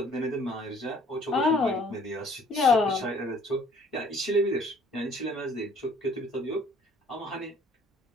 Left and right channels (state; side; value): normal; both; correlation 0.57